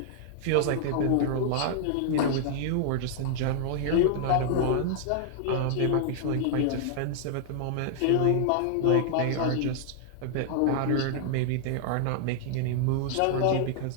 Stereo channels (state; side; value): different; both; correlation -0.01